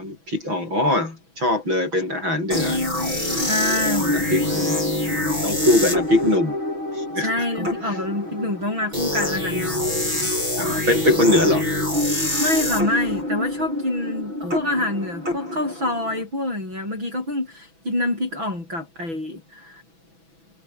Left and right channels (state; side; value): late; left; 6.1 ms